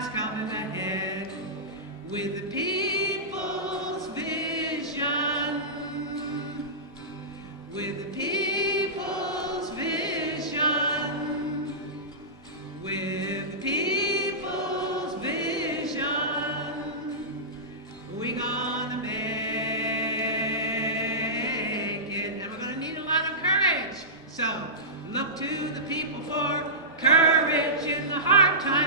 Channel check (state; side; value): normal; both; correlation -0.18